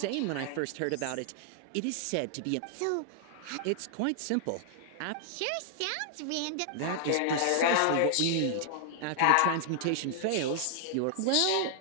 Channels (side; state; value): both; different; correlation -0.01